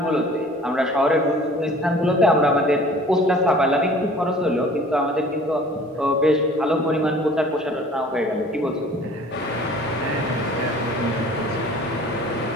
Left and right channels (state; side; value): normal; both; correlation 0.49